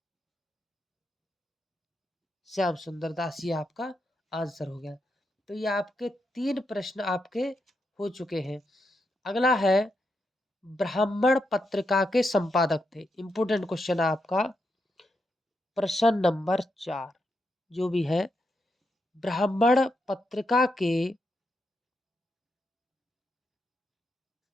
श्याम सुंदर दास, ये आपका आंसर हो गया। तो ये आपके तीन प्रश्न आपके हो चुके हैं। अगला है, ब्राह्मण पत्रिका के संपादक थे। इंपोर्टेंट क्वेश्चन है आपका, प्रश्न नंबर 4 जो भी है, ब्राह्मण पत्रिका के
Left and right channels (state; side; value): normal; both; correlation 0.83